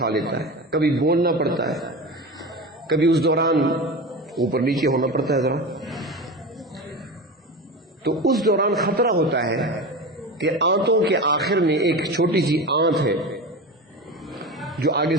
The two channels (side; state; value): both; normal; correlation 0.27